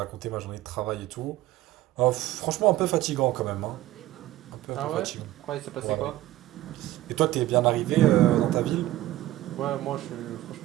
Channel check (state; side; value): quieter; left; 15.5 dB